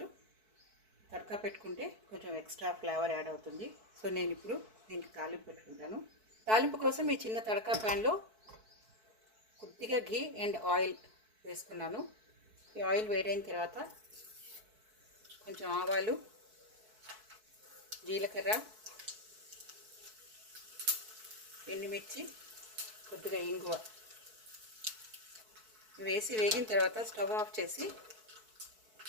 తడకా పెట్టుకుంటే కొంచెం ఎక్స్ట్రా ఫ్లేవర్ యాడ్ అవుతుంది. సో నేను ఇప్పుడు దీనికి తాలింపు పెట్టుకుంటాను. తాలింపు కోసం ఈ చిన్న తడకా ప్యాన్లో కొద్దిగా ఘీ అండ్ ఆయిల్ వేసుకున్నాను. ఈ ఆయిల్ వేడైన తర్వాత కొంచెం ఆవాలు, జీలకర్ర, ఎండుమిర్చి, కొద్దిగా ఇంగువ వేసి వేగిన తర్వాత స్టవ్ ఆఫ్ చేసి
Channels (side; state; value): left; late; 4.6 ms